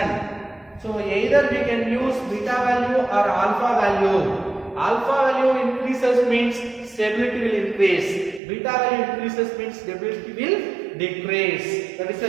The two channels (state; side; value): drops out; left; at 8.4 s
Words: So either we can use beta value or alpha value. Alpha value increases means stability will increase. Beta value increases means stability will decrease. That is the